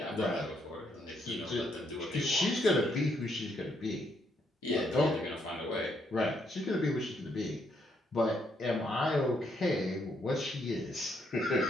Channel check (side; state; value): both; normal; correlation 0.74